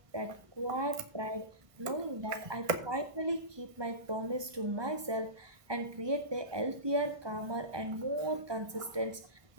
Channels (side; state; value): left; late; 1.2 ms